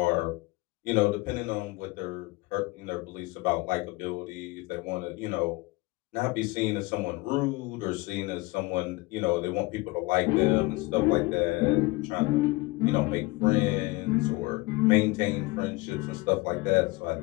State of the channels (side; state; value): right; quieter; 22.7 dB